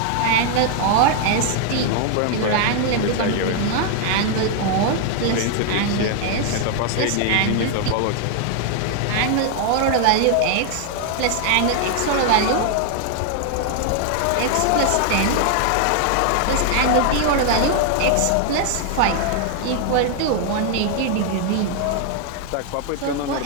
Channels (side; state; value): both; different; correlation 0.00